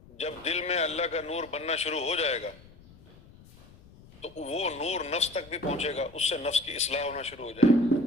جب دل میں اللہ کا نور بننا شروع ہو جائے گا تو وہ نور نفس تک بھی پہنچے گا، اس سے نفس کی اصلاح ہونا شروع ہو جائے گی۔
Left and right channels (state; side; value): noise; left; rumble, 23 dB below the sound